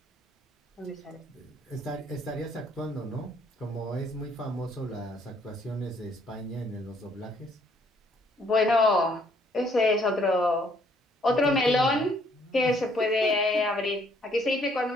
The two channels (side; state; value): both; normal; correlation 0.66